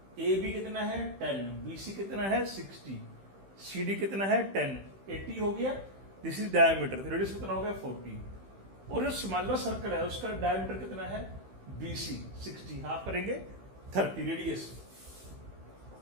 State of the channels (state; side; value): late; left; 15 ms